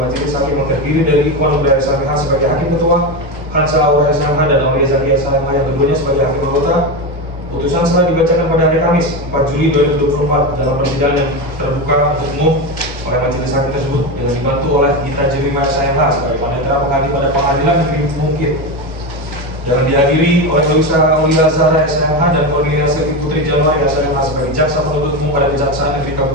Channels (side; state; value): both; normal; correlation 0.16